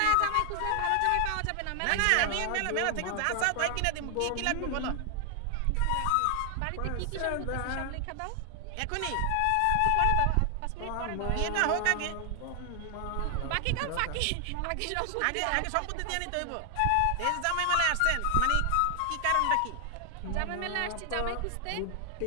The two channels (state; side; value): different; both; correlation 0.00